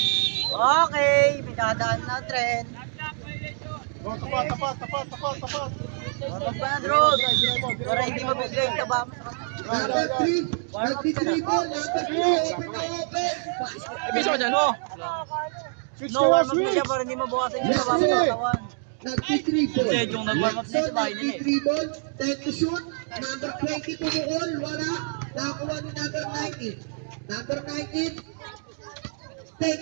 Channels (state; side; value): silent; left; 58 dB below the other